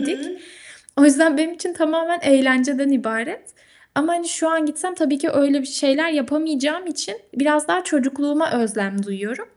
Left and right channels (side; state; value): both; identical; correlation 1.00